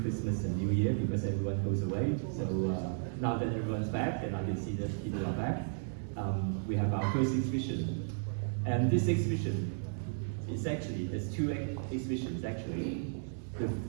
Christmas and New Year because everyone goes away. So now that everyone's back and I can see that people are back, we have our first exhibition. And this exhibition is actually, there's two exhibitions actually.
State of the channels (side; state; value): left; silent; digital silence